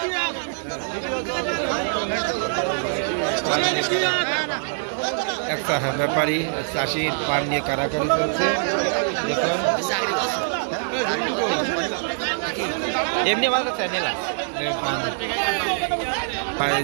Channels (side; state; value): left; silent; digital silence